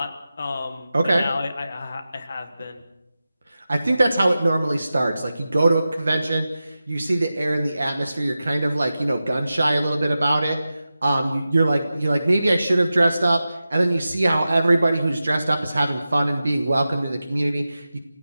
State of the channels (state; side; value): inverted; both; correlation -0.93